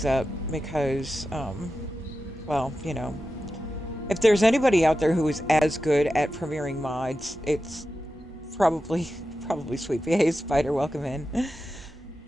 up because, well, you know, if there's anybody out there who is as good at premiering mods, it's probably Sweet Pea. Hey, Spider, welcome in.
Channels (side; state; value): both; normal; correlation 0.92